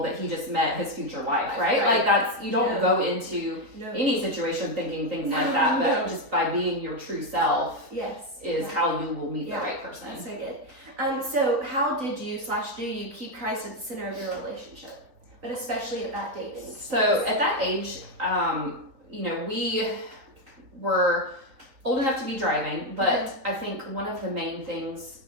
that he just met his future wife, right? Like that's, you don't go into any situation thinking things like that, but just by being your true self is how you will meet the right person. So good. So how did you / do you keep Christ at the center of your relationship, but especially at that dating? So at that age, we were old enough to be driving, but I think one of the main things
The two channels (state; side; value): late; left; 4.0 ms